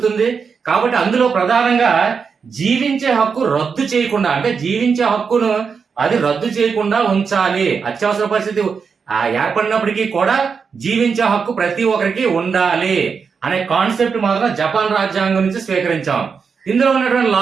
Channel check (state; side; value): quieter; left; 5.8 dB